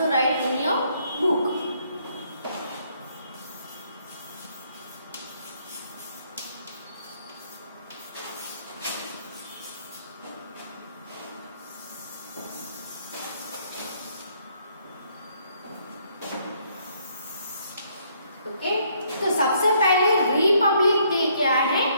write in your book. Okay, तो सबसे पहले रिपब्लिक डे क्या है।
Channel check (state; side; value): inverted; both; correlation -0.68